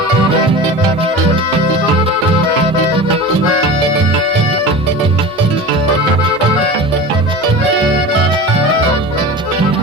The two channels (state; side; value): normal; both; correlation 0.32